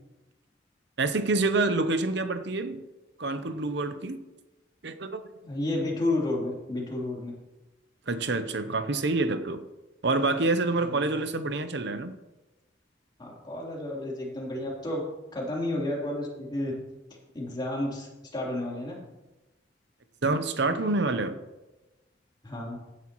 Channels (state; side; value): normal; both; correlation 0.34